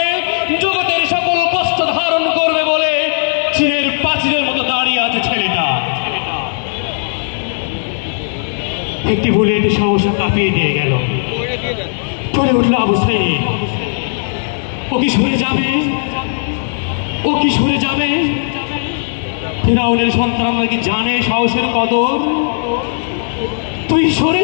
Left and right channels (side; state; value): right; silent; digital silence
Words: জগতের সকল কষ্ট ধারণ করবে বলে চীনের প্রাচীরের মতো দাঁড়িয়ে আছে ছেলেটা। একটি বুলেট সহসা কাঁপিয়ে দিয়ে গেল। পড়ে উঠল আবু সাইদ। ও কি সরে যাবে? ও কি সরে যাবে? ফিরাউনের সন্তানরা কি জানে সাহসের কদর? তুই সরে